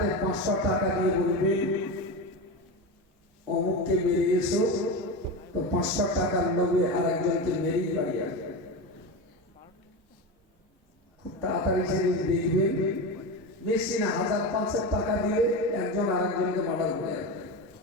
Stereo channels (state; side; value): normal; both; correlation 0.21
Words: 500 টাকা দিয়ে বলবে অমুককে মেরে এসো, তো 500 টাকার লোভে আর একজনকে মেরেই বাড়ি আসবে। খুব তাড়াতাড়ি সেদিন দেখবেন বেশি না 1000-500 টাকা দিয়ে একজন আর একজনকে মার্ডার করে আসবে,